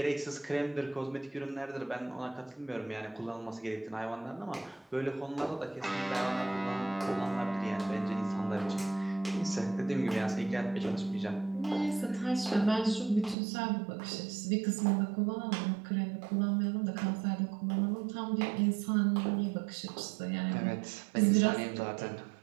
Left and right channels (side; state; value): left; drops out; at 13.4 s